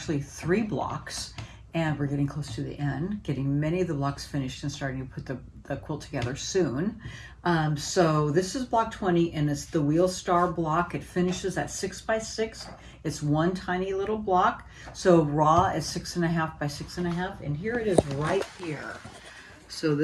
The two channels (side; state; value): both; identical; correlation 1.00